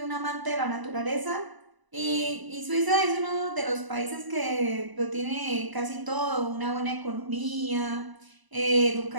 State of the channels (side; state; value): left; late; 1.0 ms